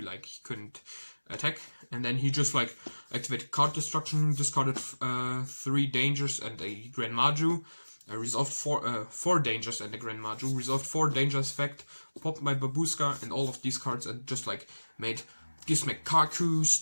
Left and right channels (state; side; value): inverted; both; correlation -1.00